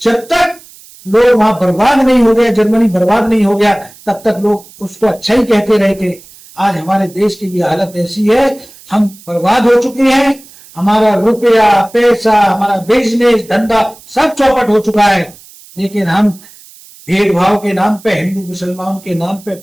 तक लोग वहां बर्बाद नहीं हो गया, जर्मनी बर्बाद नहीं हो गया, तब तक लोग उसको अच्छा ही कहते रहे थे। आज हमारे देश की भी हालत ऐसी है, हम बर्बाद हो चुके हैं। हमारा रुपया, पैसा, हमारा बिजनेस, धंधा सब चौपट हो चुका है। लेकिन हम भेदभाव के नाम पे, हिंदू मुसलमान के नाम पे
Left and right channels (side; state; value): right; noise; hiss, 23 dB below the sound